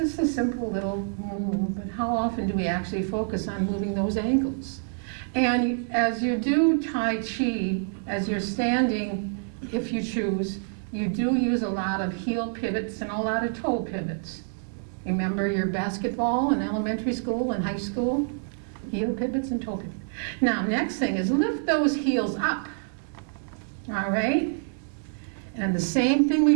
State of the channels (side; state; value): left; silent; digital silence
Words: a simple little move, but how often do we actually focus on moving those ankles? And as you do Tai Chi, as you're standing, if you choose, you do use a lot of heel pivots and a lot of toe pivots. Remember your basketball in elementary school and high school? Heel pivots and toe pivots. Now, next thing is lift those heels up. All right? And the same thing